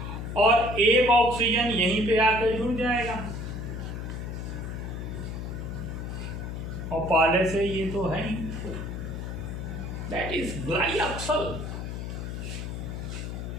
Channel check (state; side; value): noise; left; hum, 6 dB below the sound